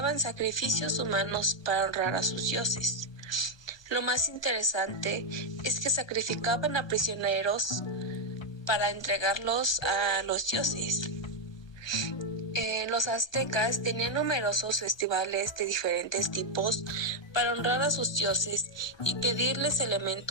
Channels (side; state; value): right; late; 1.2 ms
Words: sacrificios humanos para honrar a sus dioses. Lo más interesante es que sacrificaban a prisioneros para entregarlos a los dioses. Los aztecas tenían numerosos festivales de diferentes tipos para honrar a sus dioses y pedirles